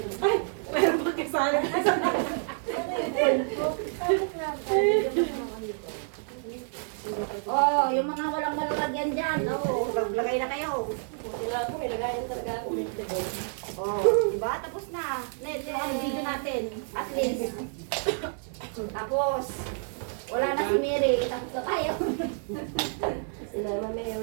Ay, meron pa kasali. Oh, yung mga walang malalagyan dyan. Oh, maglagay na kayo. Kailangan ko, may lagayan talaga ako. Oh, diba? Tapos na. Net, yung ang video natin. At least. Tapos, wala na si Mary. Tapos na tayo. Sila, Mama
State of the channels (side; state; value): left; silent; 59 dB below the other